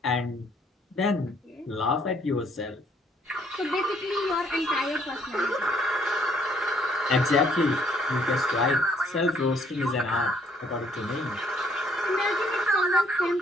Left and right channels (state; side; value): normal; both; correlation 0.65